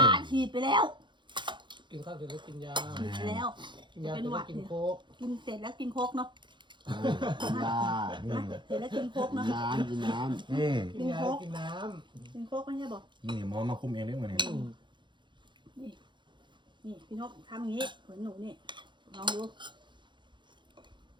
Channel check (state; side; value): late; left; 0.23 ms